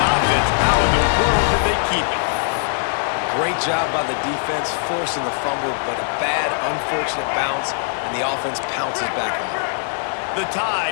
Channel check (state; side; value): silent; right; digital silence